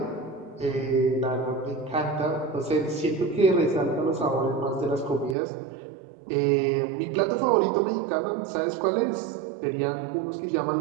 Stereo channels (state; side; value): drops out; left; at 5.4 s